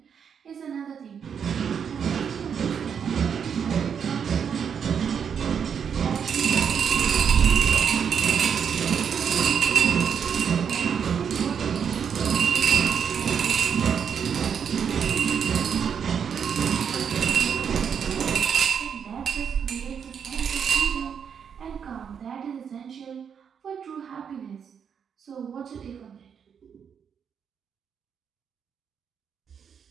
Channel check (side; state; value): left; quieter; 7.3 dB